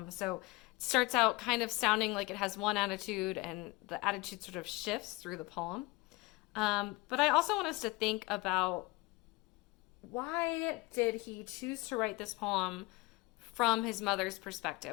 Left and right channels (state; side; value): quieter; right; 22.7 dB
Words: So it starts out kind of sounding like it has one attitude, and the attitude sort of shifts through the poem. But I also want us to think about, why did he choose to write this poem from his mother's